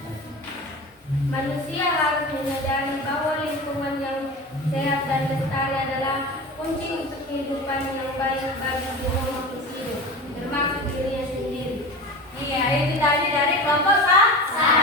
Manusia harus menyadari bahwa lingkungan yang sehat dan lestari adalah kunci untuk kehidupan yang baik bagi semua makhluk hidup, termasuk dirinya sendiri. Iya, itu tadi dari kelompok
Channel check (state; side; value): normal; both; correlation 0.30